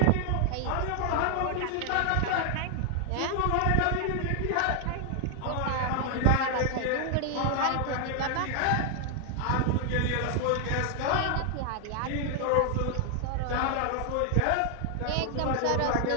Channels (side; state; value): both; different; correlation 0.00